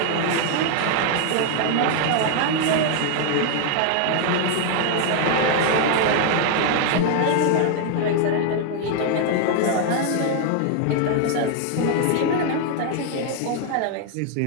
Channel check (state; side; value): different; both; correlation 0.00